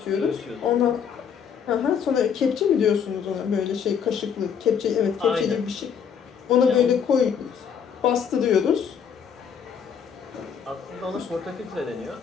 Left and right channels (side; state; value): right; quieter; 7.4 dB